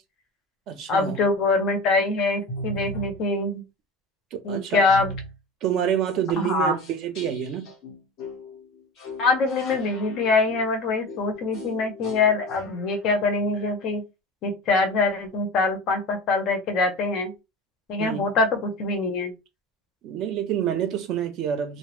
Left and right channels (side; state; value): both; normal; correlation 0.31